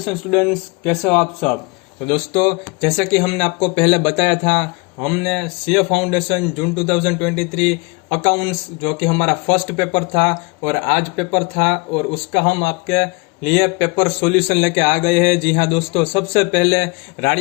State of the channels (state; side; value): quieter; right; 28.4 dB